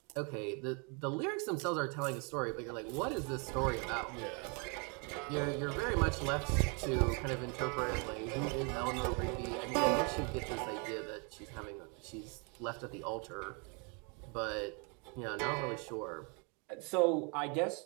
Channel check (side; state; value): left; quieter; 34.8 dB